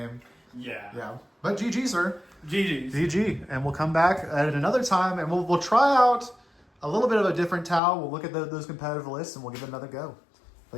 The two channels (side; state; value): right; drops out; at 7.8 s